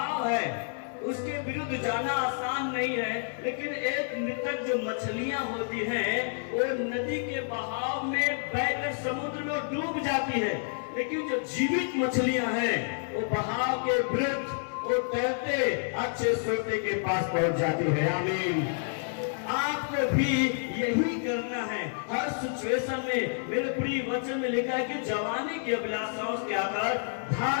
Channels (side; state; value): right; silent; digital silence